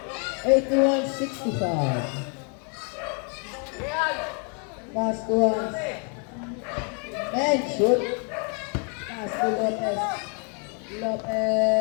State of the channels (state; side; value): quieter; right; 38.7 dB